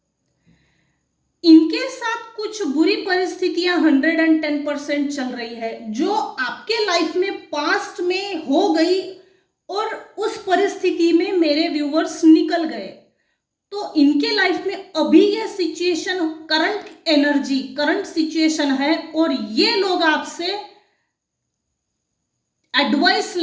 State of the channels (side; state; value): both; identical; correlation 1.00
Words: इनके साथ कुछ बुरी परिस्थितियां 110% चल रही है, जो आपके लाइफ में पास्ट में हो गई और उस परिस्थिति में मेरे व्यूअर्स निकल गए। तो इनके लाइफ में अभी ये situation, current energy, current situation है, और ये लोग आपसे एडवाइस